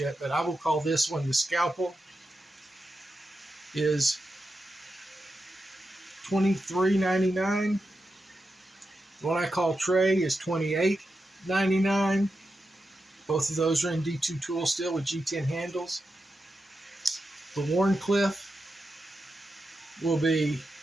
but I will call this one the scalpel. Is $23.99. What I call Tray is $28.99. Both of those are in D2 tool steel with G10 handles. The Wharncliffe will be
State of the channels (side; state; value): both; normal; correlation 0.89